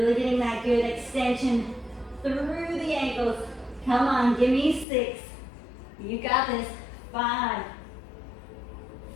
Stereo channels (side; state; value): right; drops out; at 4.9 s